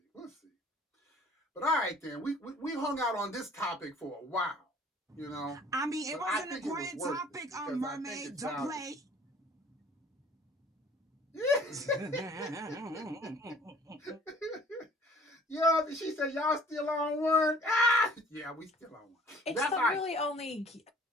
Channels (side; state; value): both; normal; correlation 0.52